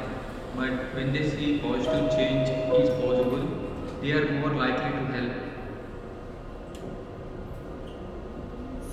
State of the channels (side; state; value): both; identical; correlation 1.00